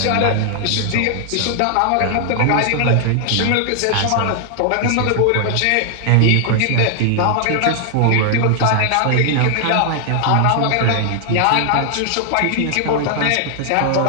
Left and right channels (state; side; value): different; both; correlation 0.00